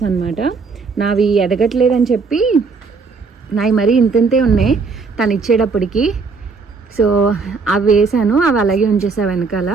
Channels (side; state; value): left; quieter; 4.6 dB